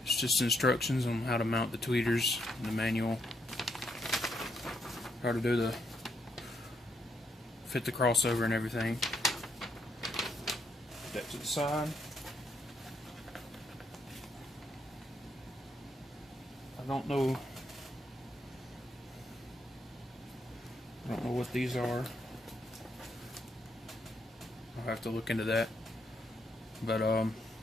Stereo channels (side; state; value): both; normal; correlation 0.76